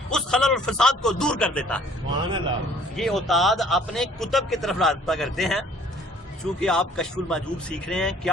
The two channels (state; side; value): normal; both; correlation 0.57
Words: اس خلل اور فساد کو دور کر دیتا ہے. یہ اوتاد اپنے کتب کی طرف رابطہ کرتے ہیں. چونکہ آپ کشف المحجوب سیکھ رہے ہیں،